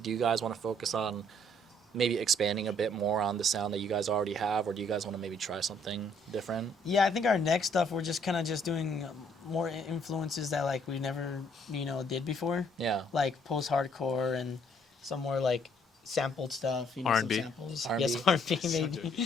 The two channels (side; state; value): both; normal; correlation 0.65